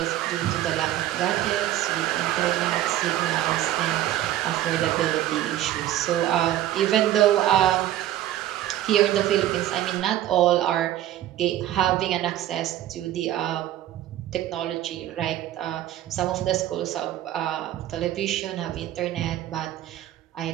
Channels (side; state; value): left; quieter; 13.2 dB